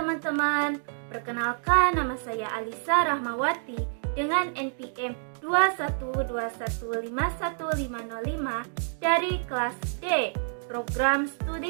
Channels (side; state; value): left; silent; digital silence